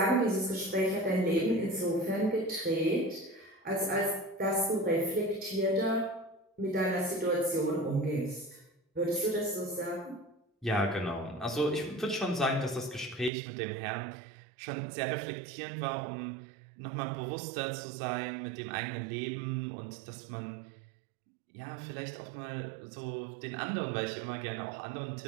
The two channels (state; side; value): drops out; left; at 13.3 s